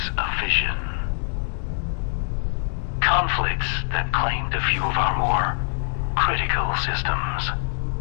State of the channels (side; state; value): right; silent; digital silence